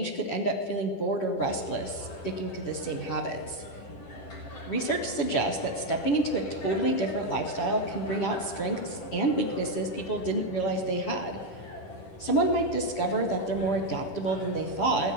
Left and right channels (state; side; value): late; right; 10 ms